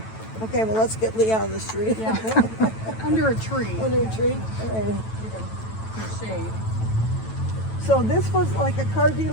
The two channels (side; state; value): right; late; 9.1 ms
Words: Okay, well, let's get Lee out of the street. Yeah. Under a tree. Under a tree. All right. In shade. So this was like a car